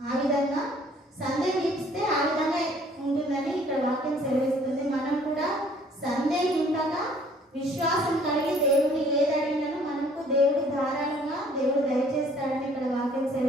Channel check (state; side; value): normal; both; correlation 0.57